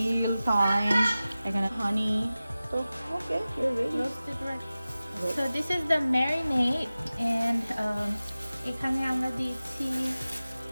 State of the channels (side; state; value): both; inverted; correlation -0.96